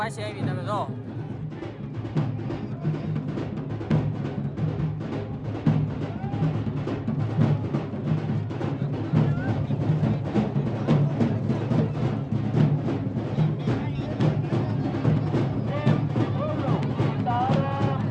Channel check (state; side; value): identical; both; correlation 1.00